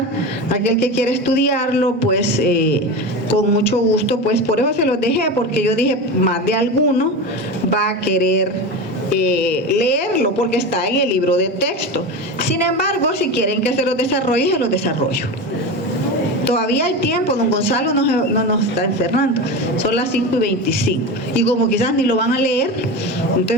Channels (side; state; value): both; normal; correlation 0.24